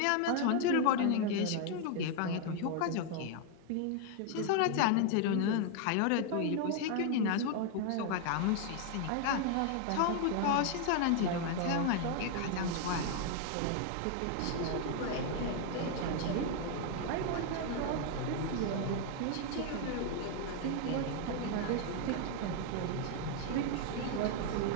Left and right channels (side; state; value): both; different; correlation 0.00